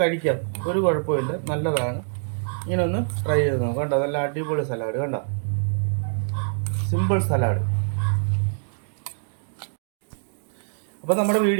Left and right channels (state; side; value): silent; left; digital silence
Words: ഒരു കുഴപ്പമില്ല, നല്ലതാണ്. ഇങ്ങനെ ഒന്ന് ട്രൈ ചെയ്ത് നോക്കാം. കണ്ടോ നല്ല അടിപൊളി സലാഡ്. കണ്ടോ സിമ്പിൾ സലാഡ്. അപ്പോൾ നമ്മുടെ